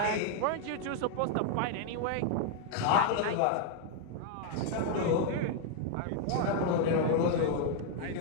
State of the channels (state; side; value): different; both; correlation 0.00